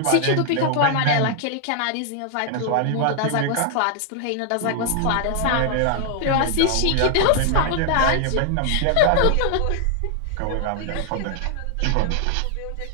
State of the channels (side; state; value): both; different; correlation 0.00